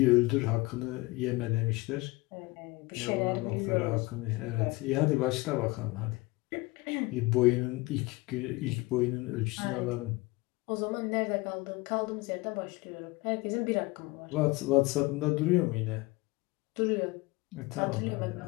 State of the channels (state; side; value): quieter; right; 22.7 dB